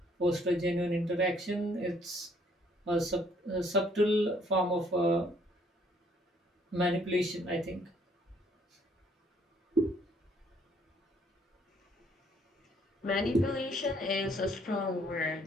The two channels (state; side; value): normal; both; correlation 0.64